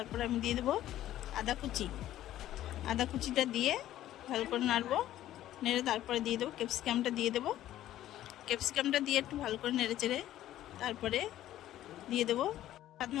আমি দিয়ে দেবো আদা কুচি। আদা কুচিটা দিয়ে ভালো করে নাড়বো। নেড়ে তারপরে দিয়ে দেবো ক্যাপসিকামটা দিয়ে দেবো। ক্যাপসিকামটা দিয়ে একটু ভালো করে নেড়ে চেড়ে তারপরে দিয়ে দেবো স্বাদ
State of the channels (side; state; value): right; quieter; 13.2 dB